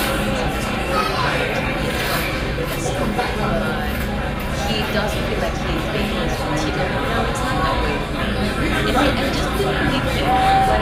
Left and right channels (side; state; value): both; identical; correlation 1.00